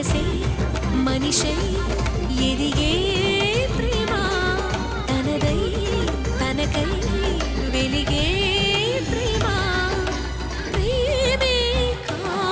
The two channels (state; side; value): identical; both; correlation 1.00